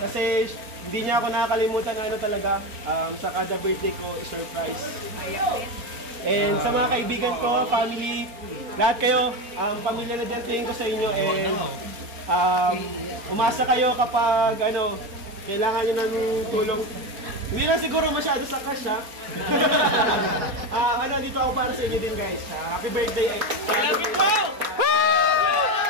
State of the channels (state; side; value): late; left; 4.3 ms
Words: hindi niya ako nakakalimutan na ano talaga, sa kada birthday ko, i-surprise. And sa mga kaibigan ko, family, lahat kayo, pamilya na tingin ko sa inyo. And umasa kayo kapag ano, kailangan nyo ng tulong. Hindi lang siguro masyado sa cash, ha? Dito ako para sa inyo din, guys. Happy birthday! Love you, bro!